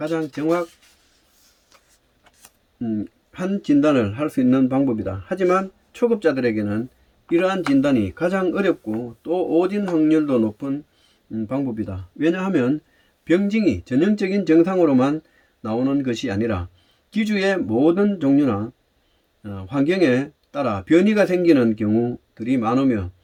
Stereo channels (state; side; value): identical; both; correlation 1.00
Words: 정확한 진단을 할 수 있는 방법이다. 하지만 초급자들에게는 이러한 진단이 가장 어렵고 또 오진 확률도 높은 방법이다. 왜냐하면 병증이 전형적인 증상으로만 나오는 것이 아니라 기주의 모든 종류나 환경에 따라 변이가 생기는 경우들이 많으며